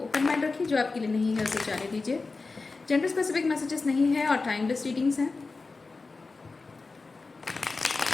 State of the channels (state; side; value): quieter; right; 3.9 dB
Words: ओपन माइंड रखिए। जो आपके लिए नहीं है उसे जाने दीजिए। जेंडर स्पेसिफिक मैसेजेस नहीं है और टाइमलेस रीडिंग्स हैं।